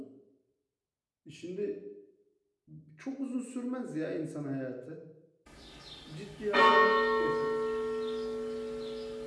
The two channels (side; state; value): both; identical; correlation 1.00